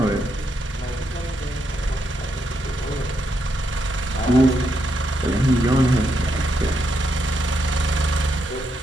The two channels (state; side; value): normal; both; correlation 0.80